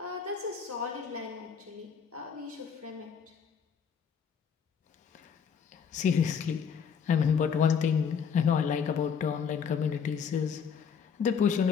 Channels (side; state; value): right; quieter; 6.8 dB